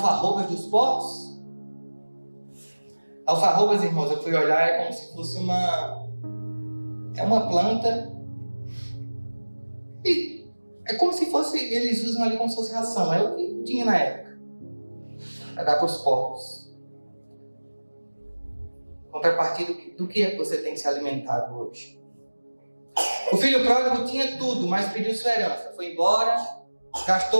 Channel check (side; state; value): both; inverted; correlation -1.00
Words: dos porcos? Alfarrobas, irmãos, eu fui olhar, é como se fosse uma planta. E é como se fosse, eles usam ali como se fosse ração. É o que tinha na época. Para dar para os porcos. Contrapartida, do que é que você tem se alimentado hoje? O filho pródigo tinha tudo, mas pediu sua herança. Foi embora,